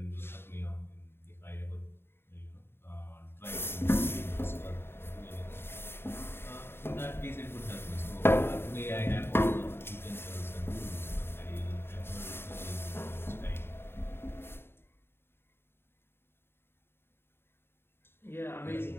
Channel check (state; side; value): late; right; 0.11 ms